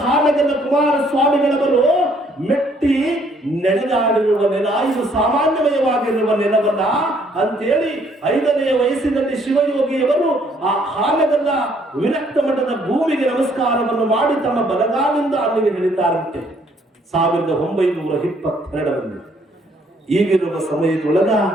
ಹಾನಗಲ್ಲ ಕುಮಾರಸ್ವಾಮಿಗಳವರು ಮೆಟ್ಟಿ ನಡೆದಾಡಿರುವ ನೆಲ, ಇದು ಸಾಮಾನ್ಯಮಯವಾಗಿರುವ ನೆಲವಲ್ಲ ಅಂತೇಳಿ 5ನೇ ವಯಸ್ಸಿನಲ್ಲಿ ಶಿವಯೋಗಿಯವರು ಆ ಹಾನಗಲ್ಲ ವಿರಕ್ತ ಮಠದ ಭೂಮಿಗೆ ನಮಸ್ಕಾರವನ್ನು ಮಾಡಿ ತಮ್ಮ ಬಲಗಾಲಿಂದ ಅಲ್ಲಿಗೆ ಇಳಿತಾರಂತೆ 1922ರಲ್ಲಿ. ಈಗಿರುವ ಸಮಯದೊಳಗ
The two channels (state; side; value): normal; both; correlation 0.65